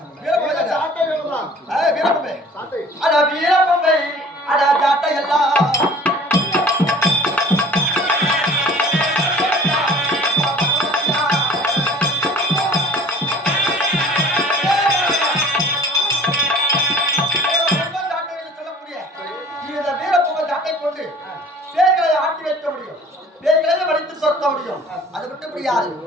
வீரப்பம்பை சாட்டை வேணுமா வீரப்பம்பை சாட்டை அட வீரப்பம்பை அட ஜாட்டை எல்லாம் சொல்லக்கூடிய இந்த வீரப்பம்பை ஜாட்டை கொண்டு பேய்களை ஆட்டி வைக்க முடியும். பேய்களை வடித்து சொத்த முடியும். அது விட்டு முடியாது.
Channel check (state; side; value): normal; both; correlation 0.48